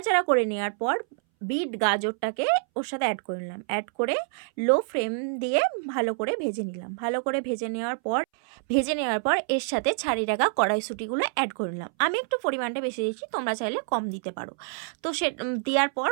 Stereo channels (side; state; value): left; silent; 60 dB below the other